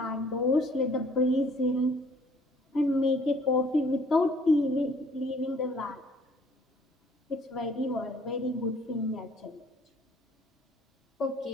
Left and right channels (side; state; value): both; normal; correlation 0.58